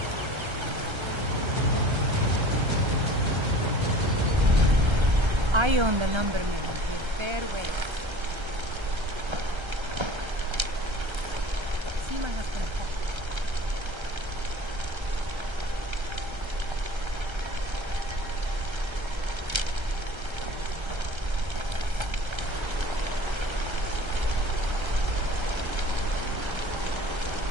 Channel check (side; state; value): left; late; 1.3 ms